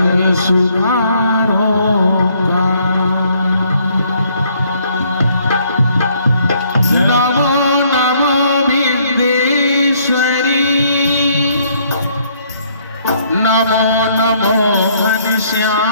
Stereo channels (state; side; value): inverted; both; correlation -0.66